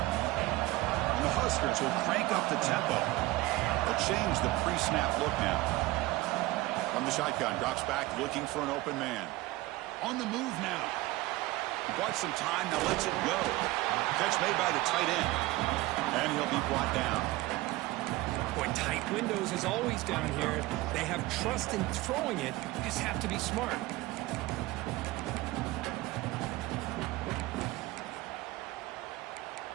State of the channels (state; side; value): quieter; left; 19.0 dB